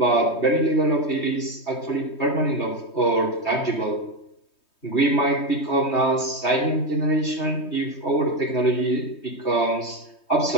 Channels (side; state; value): right; late; 3.2 ms